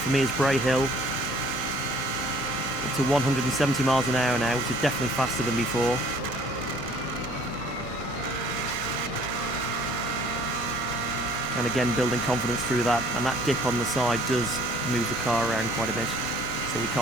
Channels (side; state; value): both; normal; correlation 0.56